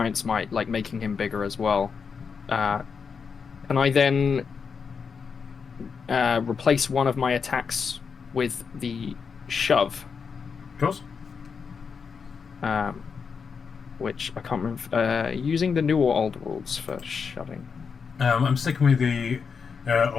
Might, like making him bigger as well. Can I then replace one of my attacks with the shove? Of course. Which I can't remember. Using the new or old rules for shoving. I'm sticking with the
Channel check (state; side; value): quieter; right; 5.9 dB